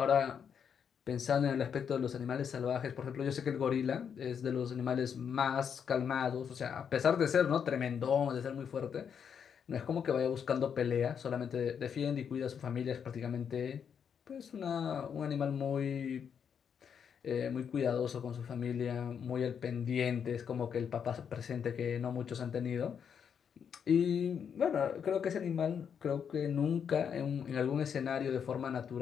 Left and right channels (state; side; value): quieter; right; 7.5 dB